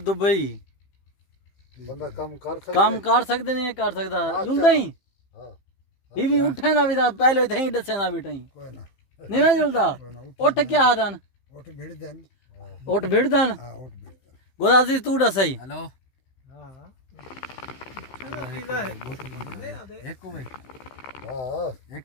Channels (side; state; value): right; late; 15 ms